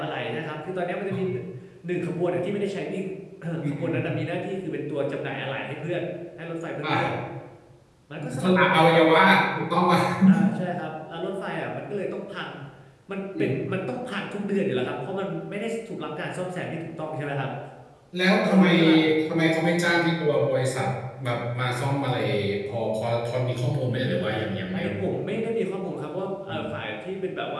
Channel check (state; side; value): identical; both; correlation 1.00